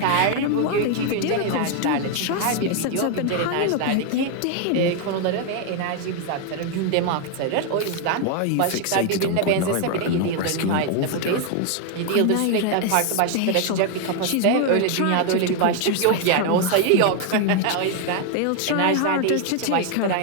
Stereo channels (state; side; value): different; both; correlation 0.01